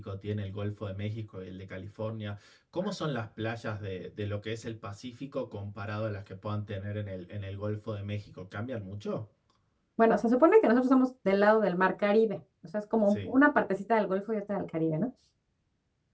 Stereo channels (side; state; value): both; identical; correlation 1.00